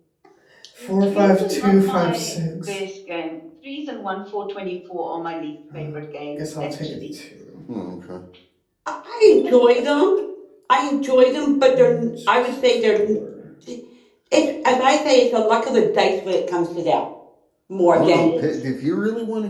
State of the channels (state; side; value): identical; both; correlation 1.00